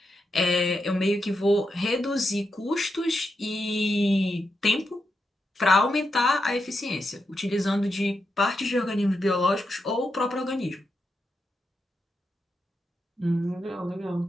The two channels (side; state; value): both; normal; correlation 0.85